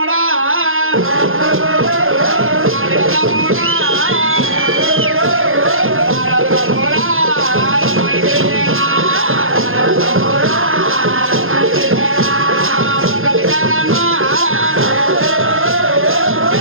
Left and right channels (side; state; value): left; late; 0.60 ms